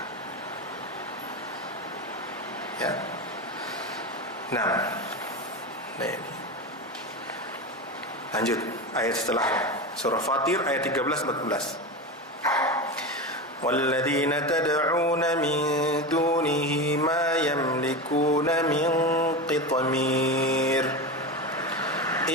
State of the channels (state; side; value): normal; both; correlation 0.21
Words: Ya. Nah ini. Lanjut ayat setelahnya, surah Fatir ayat 13-14. وَالَّذِينَ تَدْعُونَ مِن دُونِهِ مَا يَمْلِكُونَ مِن قِطْمِيرٍ